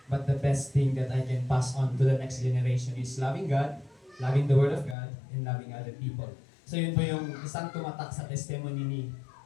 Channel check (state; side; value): drops out; right; at 5.0 s